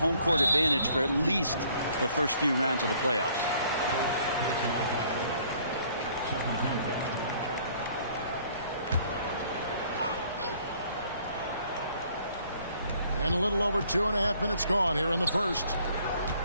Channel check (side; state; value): both; inverted; correlation -0.61